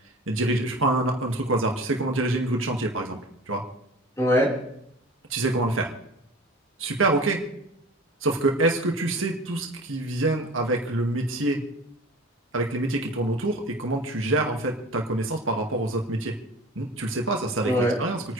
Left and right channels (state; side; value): normal; both; correlation 0.39